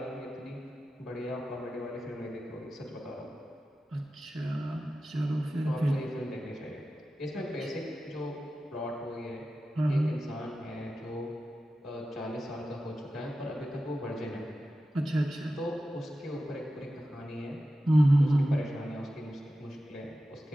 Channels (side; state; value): both; normal; correlation 0.93